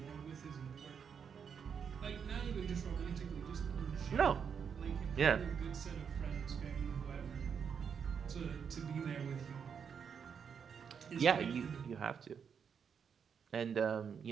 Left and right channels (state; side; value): quieter; left; 6.9 dB